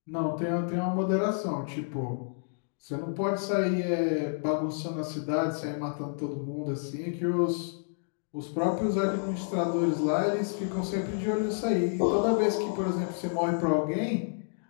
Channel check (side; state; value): right; silent; digital silence